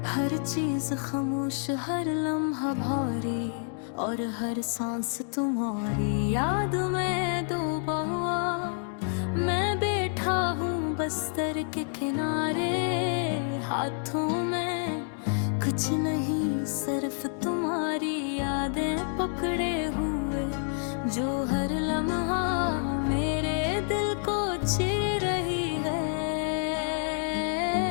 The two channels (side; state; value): right; silent; 59 dB below the other